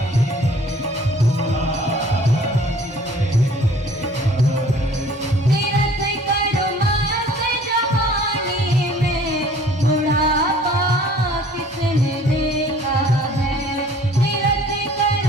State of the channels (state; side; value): normal; both; correlation 0.52